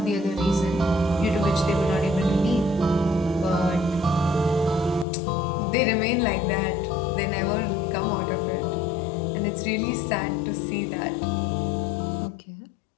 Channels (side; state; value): right; drops out; at 5.1 s